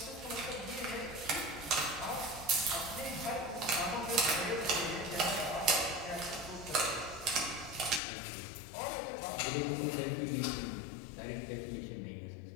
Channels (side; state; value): right; drops out; at 8.0 s